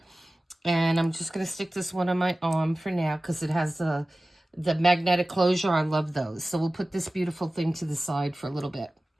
And I'm just going to stick this one on my arm for now because it has the magnetic closure. I love those. So we'll put this beautiful thing to the side for a little bit.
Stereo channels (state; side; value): normal; both; correlation 0.96